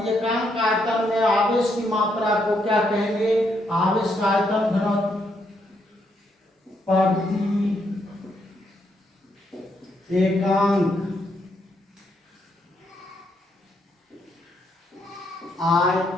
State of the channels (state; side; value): normal; both; correlation 0.76